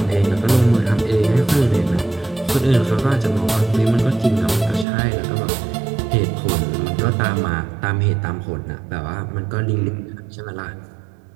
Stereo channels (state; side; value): drops out; left; at 4.9 s